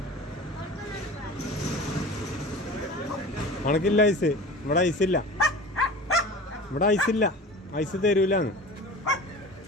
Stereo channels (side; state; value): both; normal; correlation 0.37